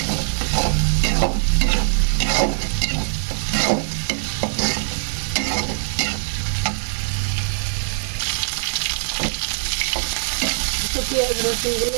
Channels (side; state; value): left; silent; digital silence